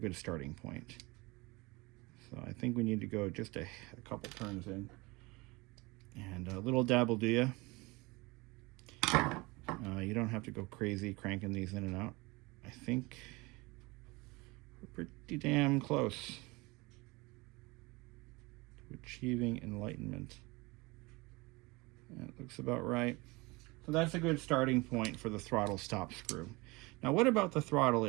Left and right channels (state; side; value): quieter; left; 24.2 dB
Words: starting point. So I think we need to go just a couple turns in. And a little dab will do ya. You don't have to go crazy cranking these in and out. I think we're pretty damn close to achieving enlightenment. That looks about right. So that's a good starting point for the throttle stop screw. Now, what about the throttle